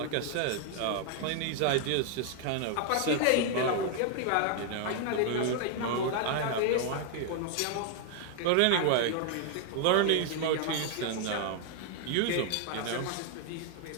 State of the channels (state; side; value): different; both; correlation 0.00